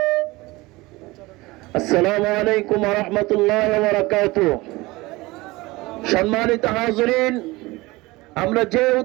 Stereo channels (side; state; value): left; quieter; 21.4 dB